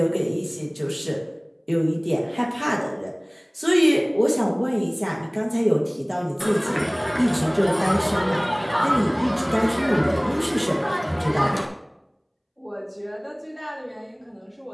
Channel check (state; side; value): identical; both; correlation 1.00